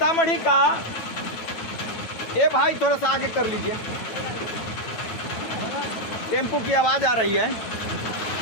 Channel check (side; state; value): right; late; 9.0 ms